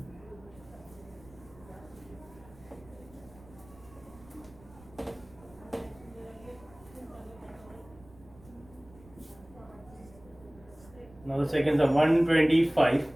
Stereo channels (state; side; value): noise; right; rumble, 23 dB below the sound